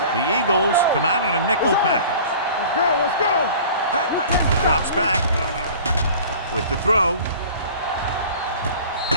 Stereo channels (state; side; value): inverted; both; correlation -0.43